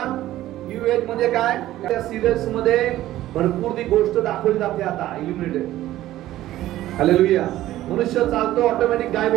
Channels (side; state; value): left; quieter; 14.6 dB